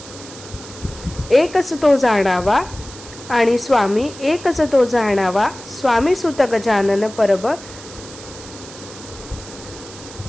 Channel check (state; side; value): noise; right; hiss, 16 dB below the sound